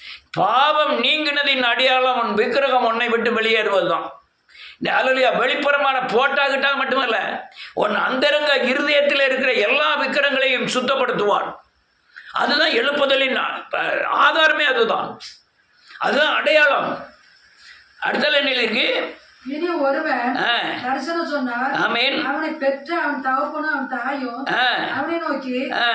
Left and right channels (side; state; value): both; identical; correlation 1.00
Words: பாவம் நீங்கினதின் அடையாளம் உன் விக்கிரகம் உன்னை விட்டு வெளியேறுவது தான். அல்லையா, வெளிப்புறமான போட்டாக்கிட்டா மட்டுமல்ல, உன் அந்தரங்க இருதயத்தில் இருக்கிற எல்லா விக்கிரங்களையும் சுத்தப்படுத்துவான். அதுதான் எழுப்புதலின் ஆதாரமே. அதுதான் அடையாளம். அடுத்த நிலையில் இருக்கு. இனி ஒருவன் தரிசனம் சொன்னார். அவனை பெற்ற அவன் தகப்பனும் அவன் தாயும் அவனை நோக்கி,